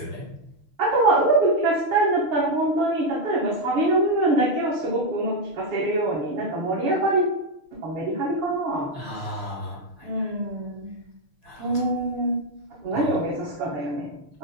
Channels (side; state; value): left; late; 6.5 ms